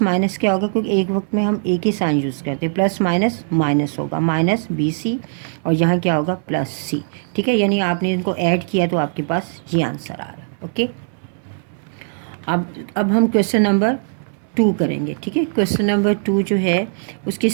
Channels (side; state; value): left; silent; digital silence